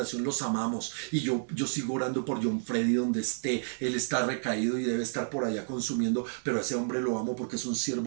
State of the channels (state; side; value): silent; left; digital silence